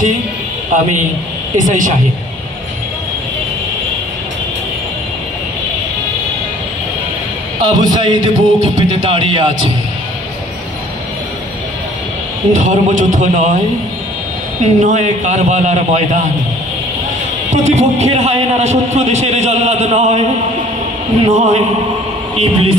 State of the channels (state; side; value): normal; both; correlation 0.53